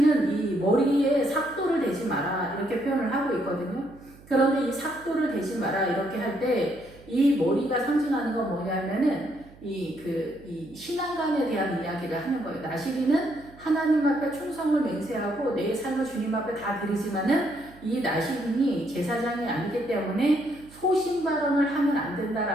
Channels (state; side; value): noise; right; hum, 23 dB below the sound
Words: 이 머리에 삭도를 대지 마라 이렇게 표현을 하고 있거든요. 그런데 이 삭도를 대지 마라 이렇게 할 때 이 머리가 상징하는 건 뭐냐면은 이 신앙관에 대한 이야기를 하는 거예요. 나시리는 하나님 앞에 충성을 맹세하고 내 삶을 주님 앞에 다 드리지만은 이 나시린이 제사장이 아니기 때문에 소신 발언을 하면 안